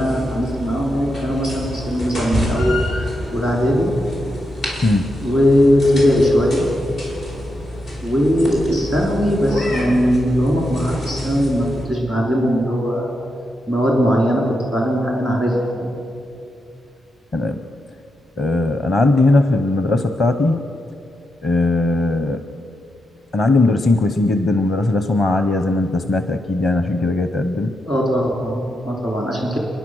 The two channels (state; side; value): normal; both; correlation 0.85